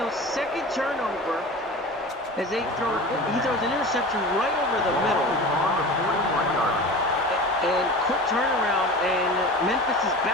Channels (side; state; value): both; normal; correlation 0.34